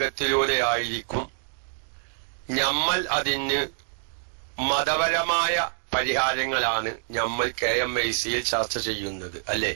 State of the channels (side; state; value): left; silent; digital silence